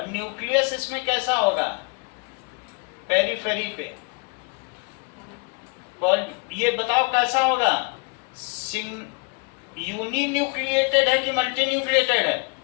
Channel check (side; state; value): right; quieter; 33.7 dB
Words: न्यूक्लियस इसमें कैसा होगा? पेरिफेरी पे। और ये बताओ कैसा होगा? यूनिन्यूक्लिएटेड है कि मल्टीन्यूक्लिएटेड है?